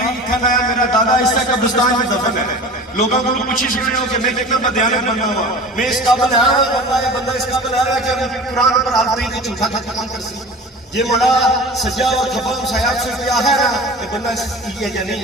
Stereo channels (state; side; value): normal; both; correlation 0.37